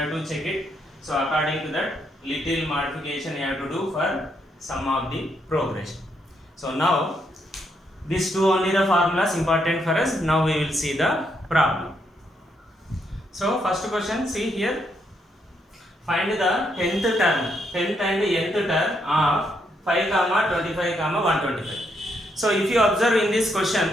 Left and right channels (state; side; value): normal; both; correlation 0.77